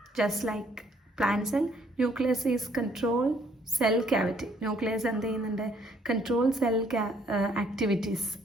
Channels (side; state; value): both; normal; correlation 0.65